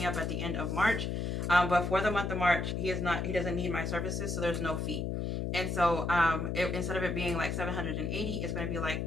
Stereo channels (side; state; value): left; noise; hum, 1 dB below the sound